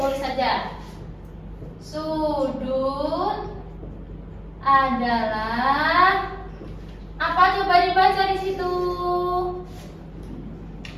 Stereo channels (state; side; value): identical; both; correlation 1.00